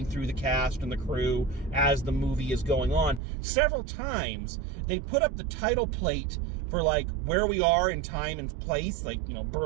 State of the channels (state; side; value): drops out; left; at 3.2 s